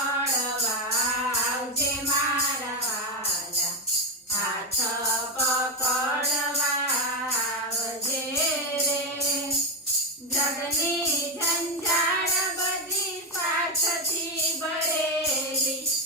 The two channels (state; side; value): normal; both; correlation 0.10